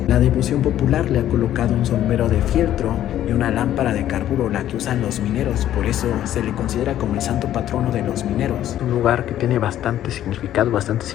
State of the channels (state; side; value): quieter; right; 12.1 dB